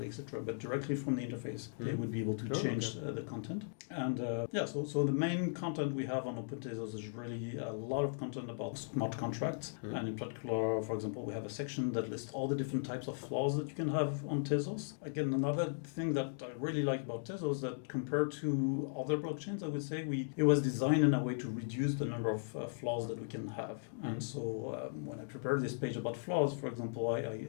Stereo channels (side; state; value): right; silent; digital silence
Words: etc. But directly from the interface, they would be able to change the content. And so the main content we have on Open Tezos is really a lot of content about smart contracts. And in particular, for example, we have a section that lists all the different types of flaws that you can have on Tezos. Again, another thing that I really like about Tezos that compared to other blockchains, I would say it was designed in a way to reduce the number of flaws that we can have. And so when I prepared this page about flaws, for example,